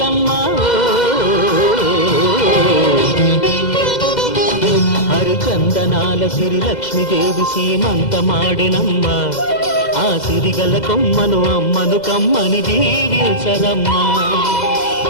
హరిచందనాల సిరి లక్ష్మీదేవి సీమంతమాడెనమ్మ. ఆ సిరిగల కొమ్మను అమ్మను కమ్మని దీవించరమ్మా.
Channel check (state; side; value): late; right; 2.0 ms